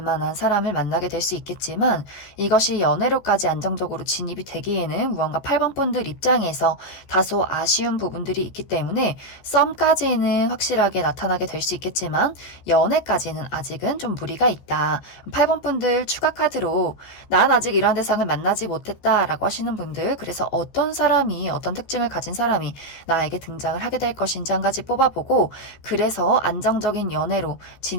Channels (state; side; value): late; right; 14 ms